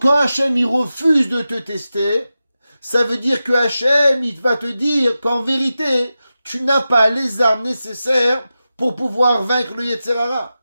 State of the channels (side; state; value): both; inverted; correlation -0.93